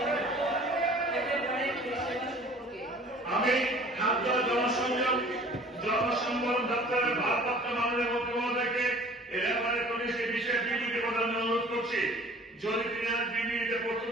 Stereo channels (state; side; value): normal; both; correlation 0.49